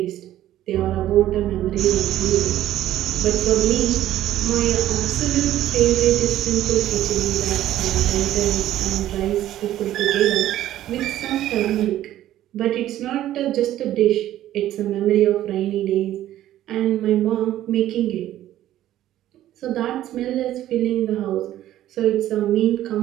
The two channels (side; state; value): left; quieter; 13.1 dB